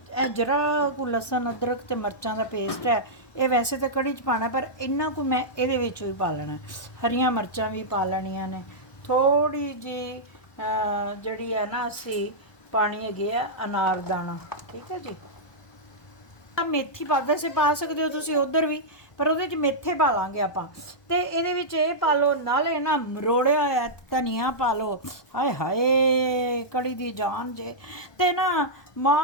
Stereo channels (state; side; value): late; right; 1.2 ms